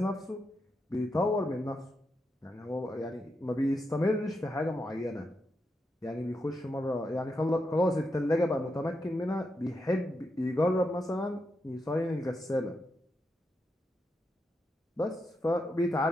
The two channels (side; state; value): both; normal; correlation 0.84